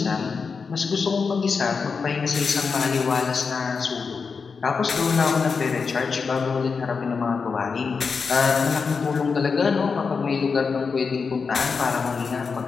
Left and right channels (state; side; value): quieter; right; 5.2 dB